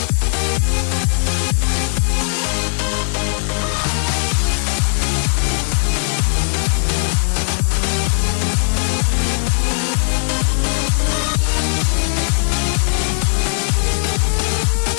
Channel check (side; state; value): right; silent; digital silence